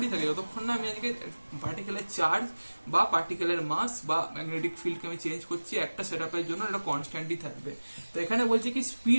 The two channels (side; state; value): both; inverted; correlation -1.00